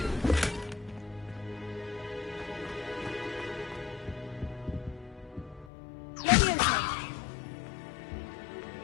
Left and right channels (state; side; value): drops out; right; at 5.7 s